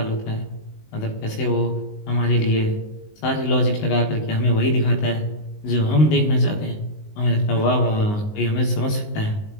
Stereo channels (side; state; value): right; late; 19 ms